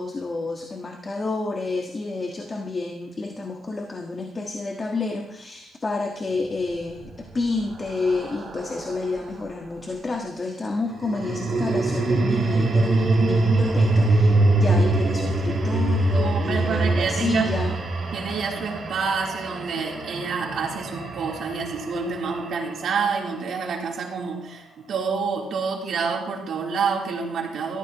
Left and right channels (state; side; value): normal; both; correlation 0.81